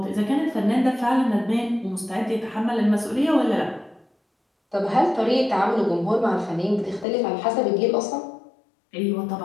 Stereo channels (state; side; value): drops out; right; at 7.1 s